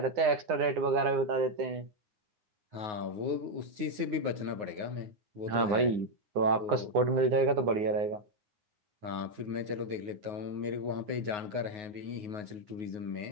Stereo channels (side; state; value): left; late; 9.7 ms